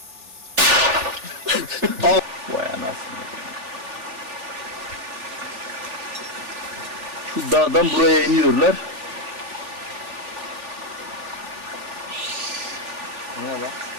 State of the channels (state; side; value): late; left; 3.4 ms